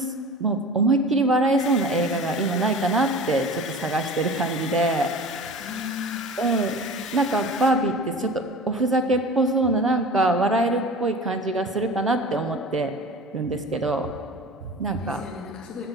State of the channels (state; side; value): normal; both; correlation 0.38